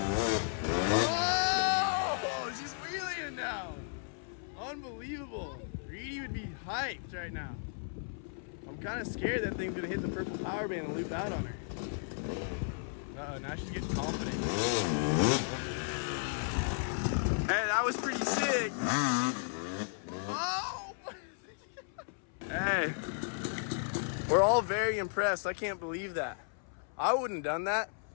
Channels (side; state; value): right; silent; 55 dB below the other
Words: Oh, she's wheeling now. Unbelievable. Reedy would be hyped right now. I'm kind of scared that thing's gonna hit the purple power band and loop out on her. Uh-oh, now she's getting confident. Hey, that was pretty sick. Oh! Hey, we're all very impressed. I can't believe that. I wouldn't have done that.